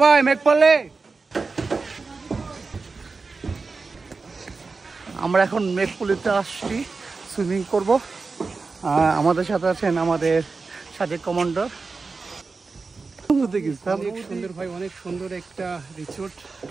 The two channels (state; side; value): quieter; left; 4.2 dB